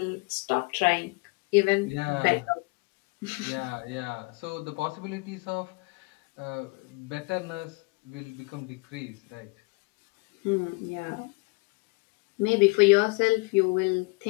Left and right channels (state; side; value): quieter; right; 29.3 dB